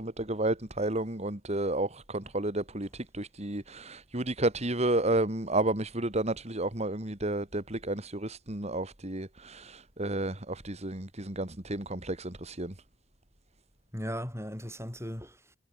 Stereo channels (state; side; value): normal; both; correlation 0.36